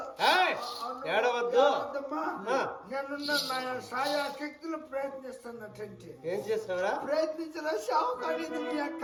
ఏడవద్దమ్మా నేనున్న నా సాయా శక్తులు ప్రయత్నిస్తున్నట్టు ఏం చేస్తావరా ప్రయత్నించరా షావు కానీ మీ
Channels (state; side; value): identical; both; correlation 1.00